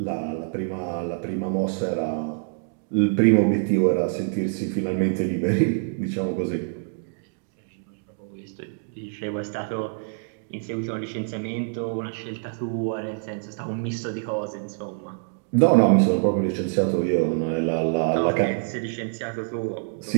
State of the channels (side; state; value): left; silent; digital silence